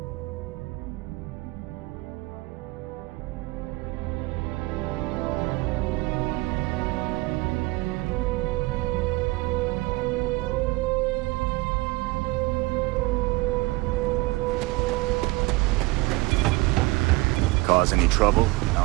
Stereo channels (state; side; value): quieter; left; 22.6 dB